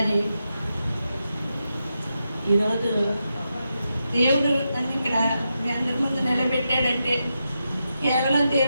ఈరోజు దేవుడు నన్ను ఇక్కడ మీ అందరి ముందు నిలబెట్టాడంటే కేవలం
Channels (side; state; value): both; inverted; correlation -0.86